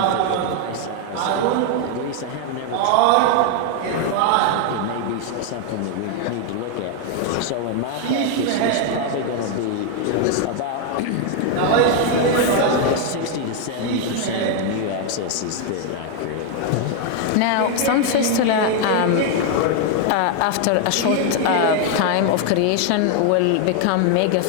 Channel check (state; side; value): different; both; correlation 0.00